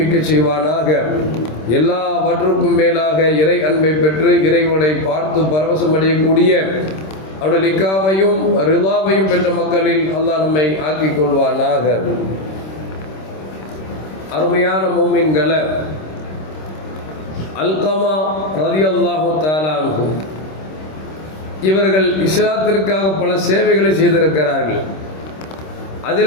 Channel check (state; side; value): late; right; 26 ms